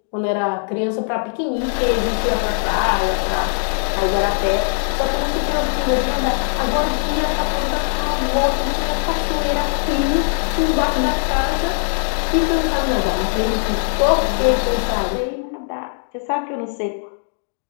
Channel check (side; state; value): right; silent; digital silence